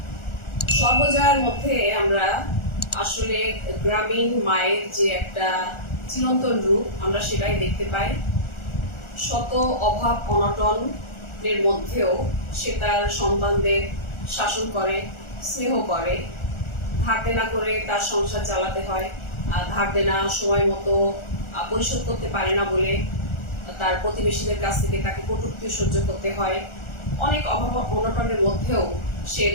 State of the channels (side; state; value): right; late; 1.4 ms